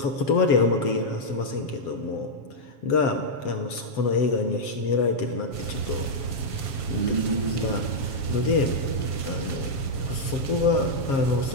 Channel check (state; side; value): late; right; 7.3 ms